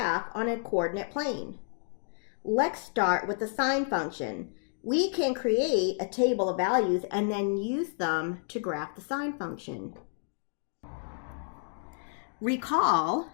on a coordinate plane? Let's start with the sine function. We can create a table of values and then use them to graph the sine function. Recall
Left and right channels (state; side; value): silent; right; digital silence